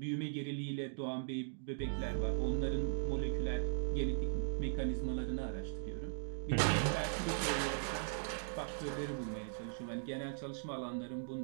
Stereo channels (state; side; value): silent; left; digital silence